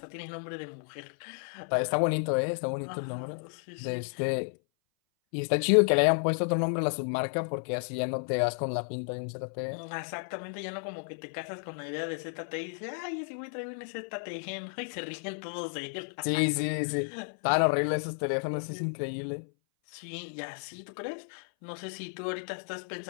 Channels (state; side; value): silent; right; 56 dB below the other